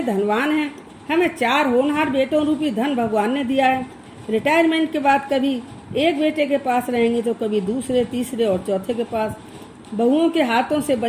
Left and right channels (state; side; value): identical; both; correlation 1.00